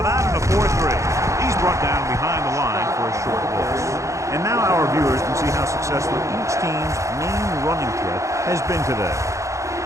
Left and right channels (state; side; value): late; left; 0.15 ms